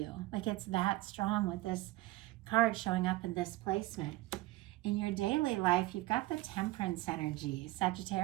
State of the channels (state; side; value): quieter; left; 18.0 dB